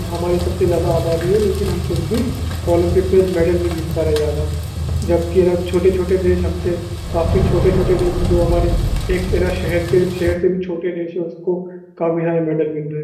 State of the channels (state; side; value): identical; both; correlation 1.00